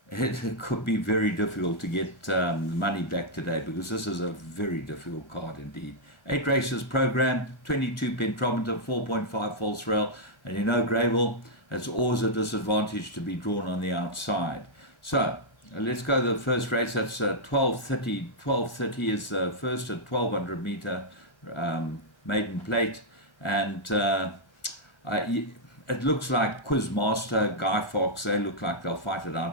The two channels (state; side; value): late; right; 1.4 ms